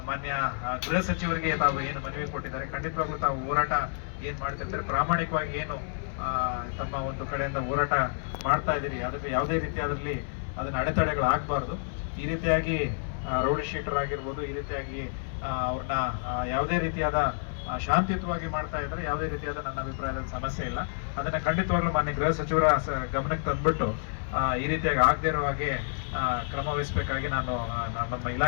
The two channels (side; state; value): right; silent; 59 dB below the other